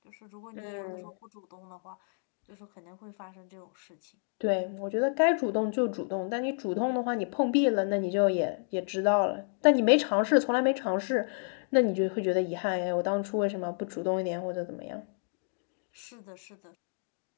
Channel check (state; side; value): silent; right; digital silence